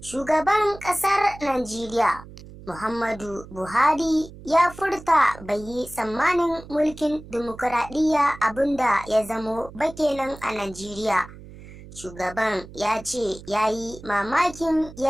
Shugaban ƙasar Najeriya Muhammadu Buhari ya furta bai yi tsammanin mulkin dimokuraɗiyya abinda ya zamo ba kenan a Najeriya. Shugaban ya ce ya yi mamakin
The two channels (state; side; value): noise; right; hum, 17 dB below the sound